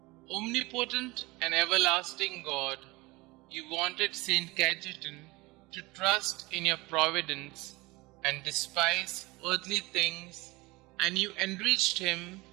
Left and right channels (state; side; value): quieter; left; 22.8 dB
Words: Omnipotent and everlasting God, you wanted St Cajetan to trust in your providence and despise earthly things, and you enriched him